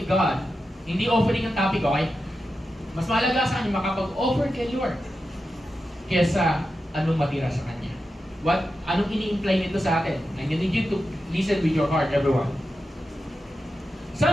God. Hindi offering ang topic, okay? Mas mahalaga sa kanya makapag-offer kay Lord kaysa anong matira sa kanya. Anong ini-imply nito sa atin? I need you to listen with your heart, everyone.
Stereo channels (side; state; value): both; normal; correlation 0.90